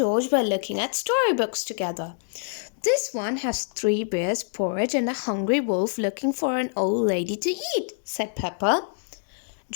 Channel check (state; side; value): silent; right; digital silence